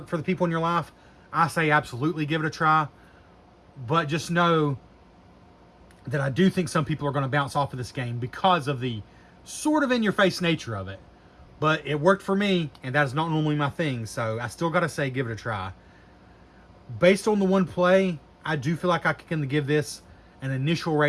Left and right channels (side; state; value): both; identical; correlation 1.00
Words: for the people in your life, I say absolutely give it a try. But just know that I do think some people are going to bounce off of this game because of the sort of in-your-face nature of it. But it worked for me, and that is not normally my thing, so I still got to say give it a try. Based on the one play, I do feel like I can give this an initial